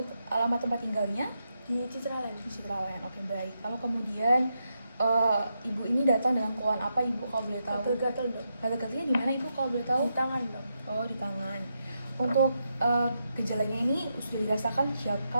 alamat tempat tinggalnya? Di Citraland. Di Citraland. Oke, baik. Lalu kemudian Ibu ini datang dengan keluhan apa Ibu kalau boleh tahu? Gatal-gatal dok. Gatal-gatalnya di mana Ibu kalau boleh tahu? Di tangan dok. Oh, di tangan. Untuk gejalanya ini sudah dirasakan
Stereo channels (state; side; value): inverted; both; correlation -0.84